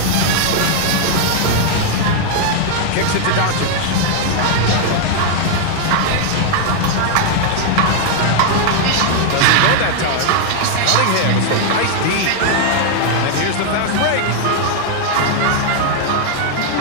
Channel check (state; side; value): different; both; correlation 0.00